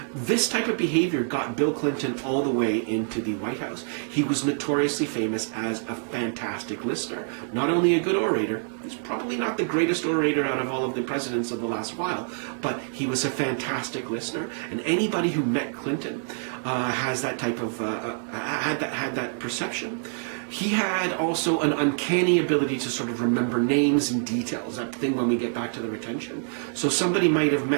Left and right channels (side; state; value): left; silent; 61 dB below the other